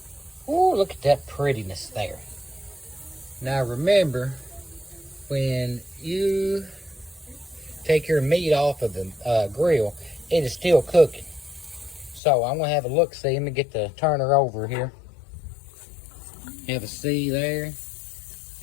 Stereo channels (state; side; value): drops out; right; at 12.2 s